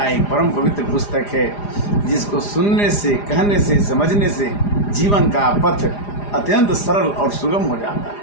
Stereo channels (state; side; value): late; right; 4.9 ms